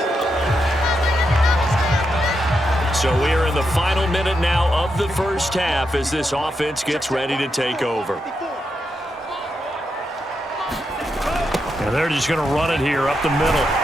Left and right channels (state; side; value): normal; both; correlation 0.84